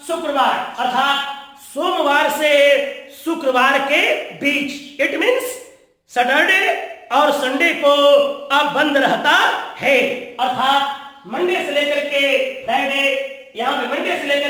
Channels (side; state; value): both; identical; correlation 1.00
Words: शुक्रवार, अर्थात सोमवार से शुक्रवार के बीच। इट मीन्स सैटरडे और संडे को अब बंद रहता है, अर्थात मंडे से लेकर के फ्राइडे, यहाँ पे मंडे से